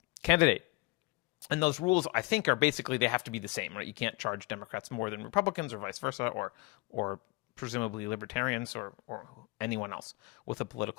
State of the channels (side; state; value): right; quieter; 24.1 dB